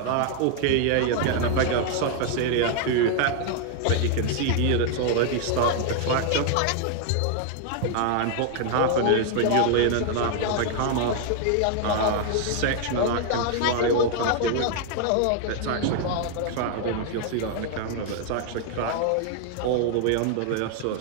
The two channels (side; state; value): both; different; correlation 0.00